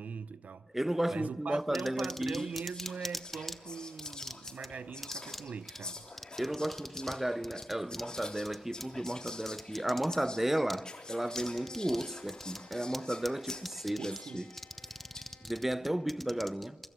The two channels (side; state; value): both; normal; correlation 0.94